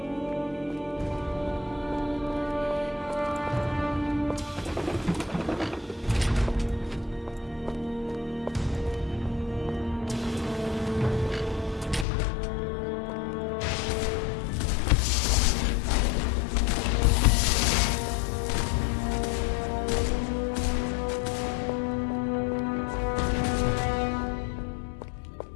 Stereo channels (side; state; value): right; drops out; at 12.1 s